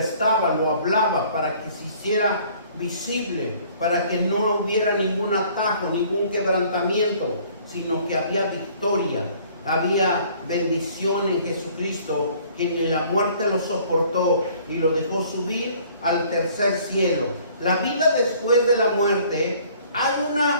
lo hablaba, para que se hiciera visible, para que no hubiera ningún atajo, ningún quebrantamiento, sino que había victoria, había bendición en Jesucristo, quien en la muerte lo soportó y lo dejó subir al tercer cielo. La vida después de la muerte, hay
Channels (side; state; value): both; inverted; correlation -0.56